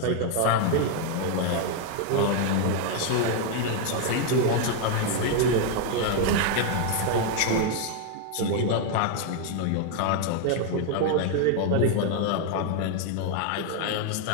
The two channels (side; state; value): both; different; correlation 0.00